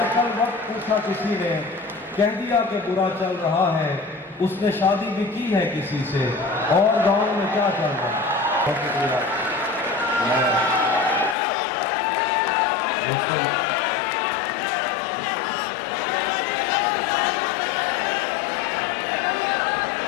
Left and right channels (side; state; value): right; drops out; at 11.4 s